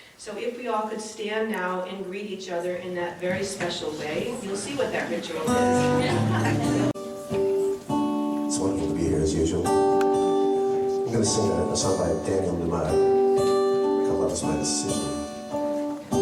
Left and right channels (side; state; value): both; identical; correlation 1.00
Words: So if we all could stand now and greet each other in that very special way, you'll see what that ritual is. It's wonderful to be here as usual. I'm going to sing a song by Daniel Lumar called Love Is My Decision.